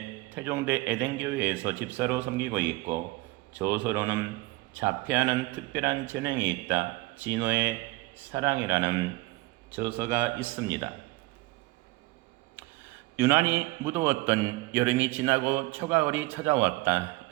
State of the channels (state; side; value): quieter; left; 21.0 dB